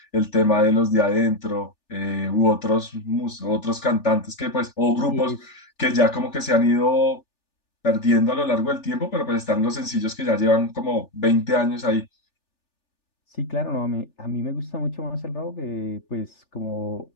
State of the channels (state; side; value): late; right; 3.4 ms